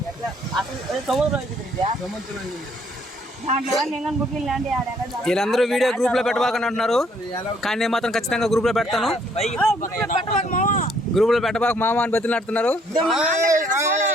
వీళ్ళందరూ వీడియో గ్రూప్ లో పెట్టబాకని అంటున్నారు, కానీ నేను మాత్రం ఖచ్చితంగా గ్రూప్ లో పెడతాను. గ్రూప్ లో పెట్టబాక మామ అని బతిలాడుతున్నారు.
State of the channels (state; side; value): normal; both; correlation 0.65